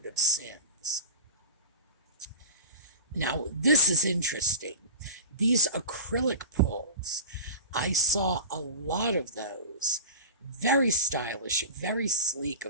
of sins. Now, this is interesting. These acrylic pulls, I saw a lot of those. Very stylish, very sleek,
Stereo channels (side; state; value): both; inverted; correlation -0.32